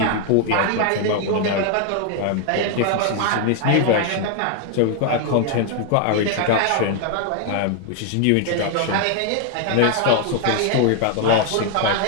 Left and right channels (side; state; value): both; different; correlation 0.01